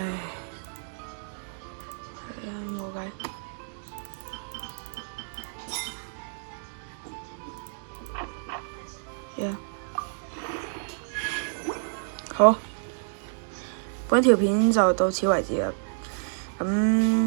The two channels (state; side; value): silent; left; digital silence